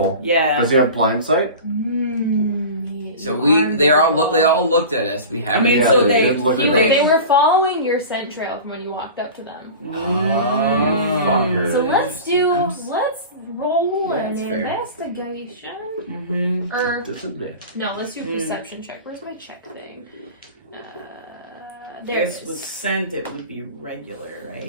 Yeah. Does he have blind sight? So they all looked at us. We I haven't. mean, Yeah, so they they, did look at You, us. they were following your scent trail from when you walked up to them. Fuckers. So let's roll Yeah, an that's fair. investigation. Mm-hmm. Or Disadvantage. no, let's do a perception check. Where's my check thing? There it Guess with is. scent it would be regular, right?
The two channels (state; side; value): inverted; both; correlation -0.34